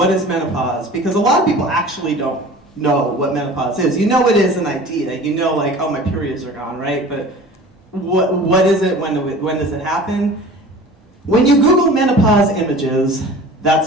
is menopause? Because a lot of people actually don't know what menopause is. It is an idea. Like, oh, my periods are gone, right? But what is it? When does it happen? When you Google menopause images,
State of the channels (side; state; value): both; normal; correlation 0.41